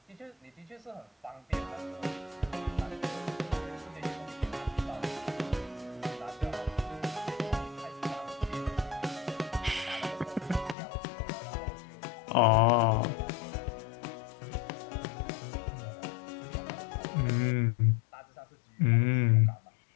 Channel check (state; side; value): drops out; right; at 10.8 s